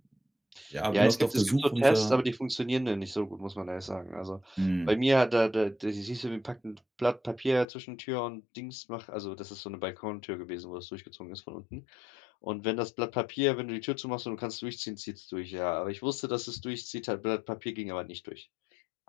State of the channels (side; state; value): right; drops out; at 7.7 s